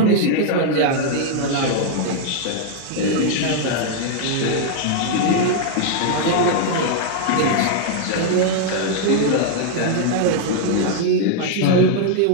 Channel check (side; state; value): both; different; correlation 0.00